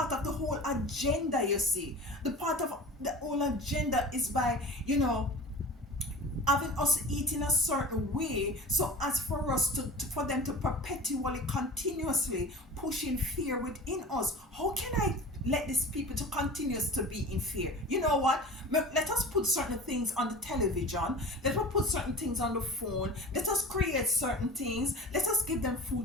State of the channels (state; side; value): normal; both; correlation 0.36